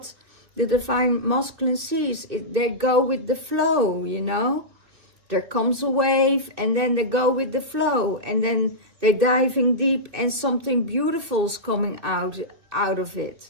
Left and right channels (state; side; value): late; left; 2.6 ms